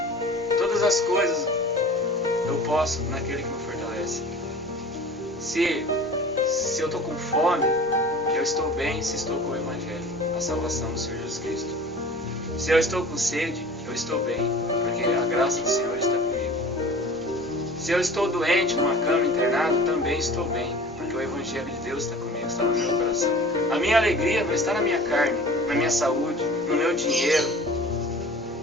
Todas as coisas eu posso naquele que me fortalece. Se eu estou com fome, eu estou bem se estou com o Evangelho, a salvação do Senhor Jesus Cristo. Se eu estou com sede, eu estou bem, porque a graça do Senhor está comigo. Se eu estou doente numa cama internado, também estou bem, porque o Evangelho de Deus está comigo, está no meu coração. A minha alegria não está na minha carne, na minha saúde, no meu dinheiro,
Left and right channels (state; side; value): normal; both; correlation 0.42